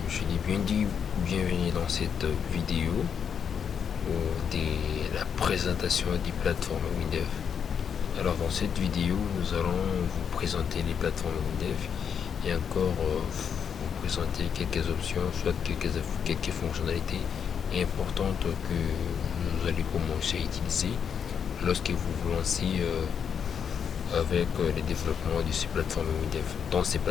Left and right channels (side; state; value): right; quieter; 7.4 dB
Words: je l'ai bien dit, bienvenue dans cette vidéo de la présentation des plateformes WinDev. Alors, dans cette vidéo, nous allons vous présenter les plateformes WinDev et encore vous présenter quelques options, soit quelques fonctionnalités importantes que vous allez commencer à utiliser lorsque vous vous lancez avec le développement de ces plateformes WinDev, dans ces